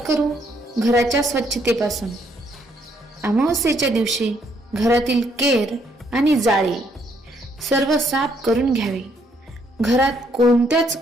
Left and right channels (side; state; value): both; normal; correlation 0.70